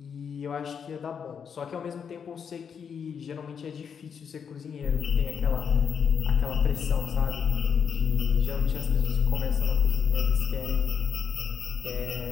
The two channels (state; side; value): quieter; right; 7.0 dB